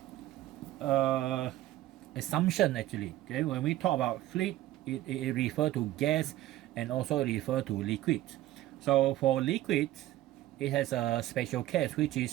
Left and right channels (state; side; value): quieter; left; 14.7 dB